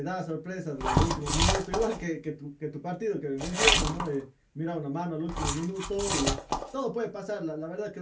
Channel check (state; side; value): identical; both; correlation 1.00